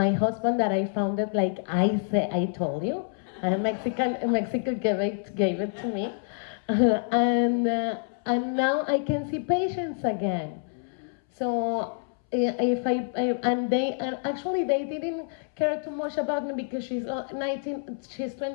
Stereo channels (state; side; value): silent; right; 60 dB below the other